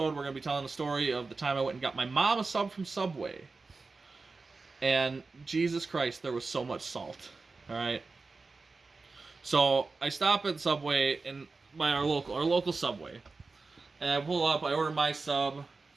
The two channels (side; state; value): left; quieter; 4.0 dB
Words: we're going to be telling the story of the time I went and got my mom a sub from Subway. And Jesus Christ, there was so much salt. All right. So I stop at Subway by our local Subway, and I pull up. I order my sub